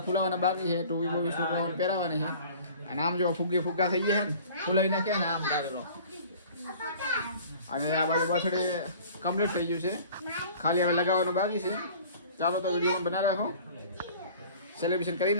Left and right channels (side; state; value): both; inverted; correlation -0.46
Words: ફૂલાવાના બાકી છે, ટોપી બોપી છોકરાઓને પહેરાવાની છે. અને આમ જો ફુગ્ગા થઈ ગયા છે ને, ફૂલાઈ નાખ્યા ને આમ ડારેલો. અને આ બાજુ બર્થડે કમ્પ્લીટ થઈ ગયું છે, ખાલી હવે લગાવવાનું બાકી છે. ચાલો તો વિડીયો બનાવી રાખો, સેલિબ્રેશન કરી